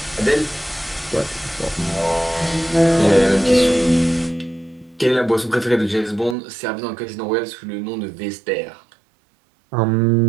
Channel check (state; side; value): drops out; left; at 6.4 s